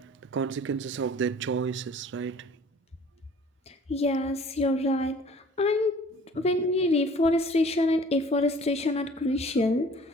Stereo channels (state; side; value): normal; both; correlation 0.50